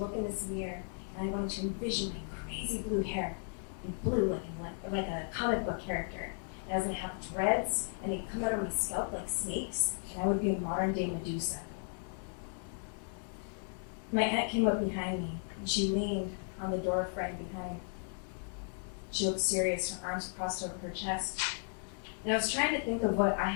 look in this mirror, and I wanted to envision my crazy blue hair be blue looking like a comic book character. And I was going to have dreads, and they'd come out of my scalp like snakes, and I would be a modern-day Medusa. My aunt came up behind me, and she leaned on the door frame behind. She looked serious, her arms crossed over her chest. And I was trying to think of what I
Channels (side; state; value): right; silent; 54 dB below the other